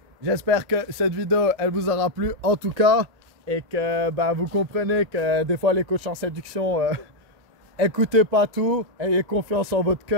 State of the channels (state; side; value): late; left; 1.9 ms